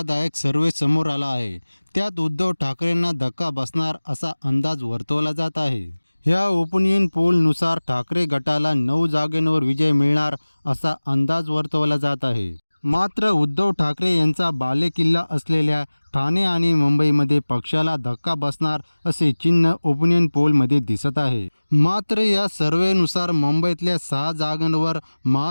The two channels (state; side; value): inverted; both; correlation -1.00